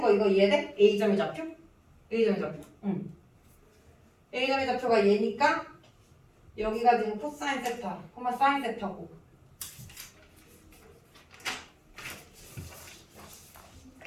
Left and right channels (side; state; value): both; identical; correlation 1.00